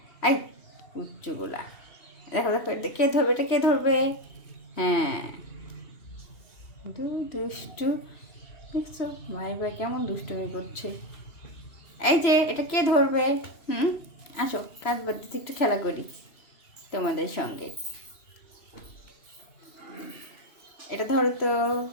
এই উচ্চগুলা, দেখো দেখো এটা কে ধরবে, এটা কে ধরবে? হ্যাঁ দুষ্টু, দেখছো ভাই ভাই কেমন দুষ্টুমি করছে। এই যে এটা কে ধরবে? আসো কাজ বাদ দিতে একটু খেলা করি তোমাদের সঙ্গে। এটা ধরো তো,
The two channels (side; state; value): right; late; 2.8 ms